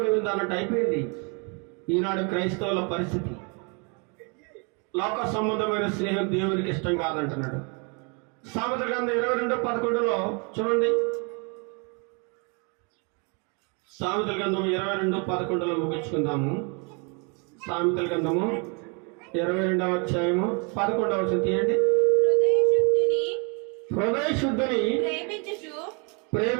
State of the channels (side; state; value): left; quieter; 34.7 dB